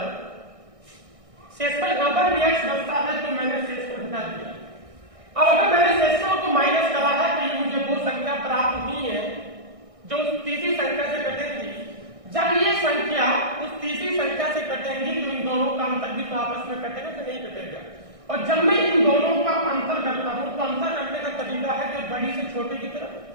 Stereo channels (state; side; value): late; left; 1.6 ms